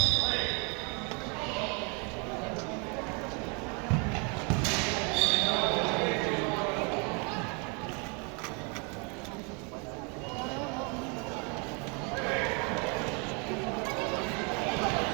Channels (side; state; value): left; quieter; 33.9 dB